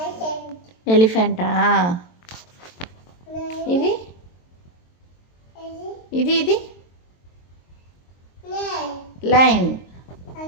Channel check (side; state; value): right; late; 23 ms